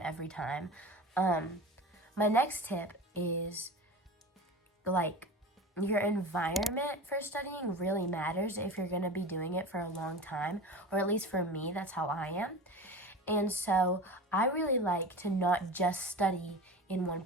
every time. My next tip is, like, your environment for studying really matters if you're going to be doing it for a long time, or at least for me, that's how I am. And so I really like to not just study in one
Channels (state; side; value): normal; both; correlation 0.32